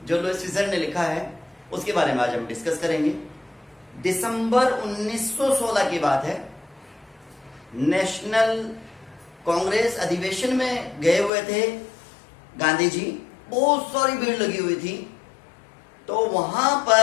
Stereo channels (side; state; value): right; drops out; at 11.3 s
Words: जो लुईस सीजर ने लिखा है उसके बारे में आज हम डिस्कस करेंगे। दिसंबर 1916 की बात है। नेशनल कांग्रेस अधिवेशन में गए हुए थे गांधी जी। बहुत सारी भीड़ लगी हुई थी। तो वहां